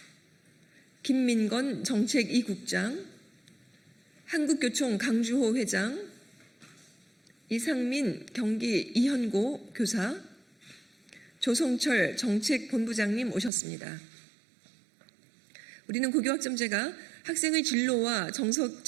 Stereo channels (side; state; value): left; drops out; at 13.5 s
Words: 김민건 정책 2국장, 한국교총 강주호 회장, 이상민 경기 이현고 교사, 조성철 정책본부장님 오셨습니다. 우리는 고교학점제가 학생의 진로와